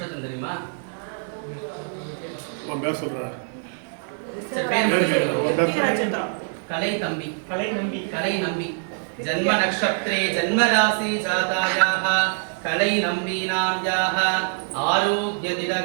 தெரியுமா உங்க பேர் சொல்றா சரி பேர் कलै नंबी जन्म नक्षत्रे जन्म राशि जातायाः कलै नंबीनाम्याः आरोग्य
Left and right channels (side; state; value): left; silent; digital silence